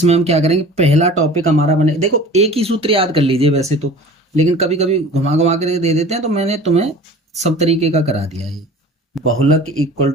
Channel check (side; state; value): both; normal; correlation 0.42